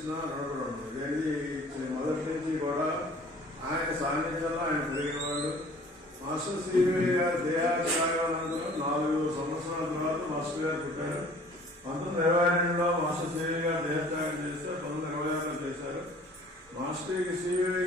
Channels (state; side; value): normal; both; correlation 0.51